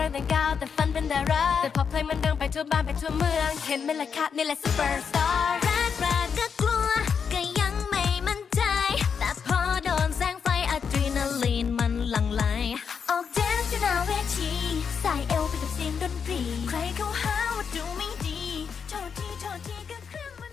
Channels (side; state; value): right; quieter; 6.5 dB